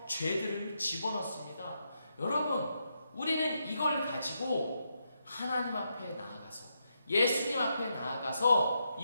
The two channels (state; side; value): inverted; both; correlation -0.82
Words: 죄들을 집어넣습니다. 여러분, 우리는 이걸 가지고 하나님 앞에 나아가서, 예수님 앞에 나아가서